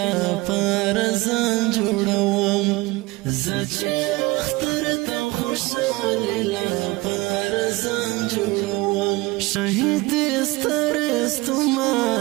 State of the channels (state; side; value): quieter; left; 21.9 dB